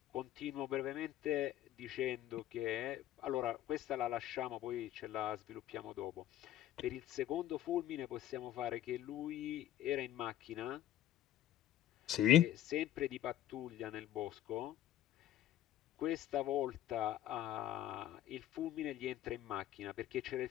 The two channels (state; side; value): quieter; right; 12.5 dB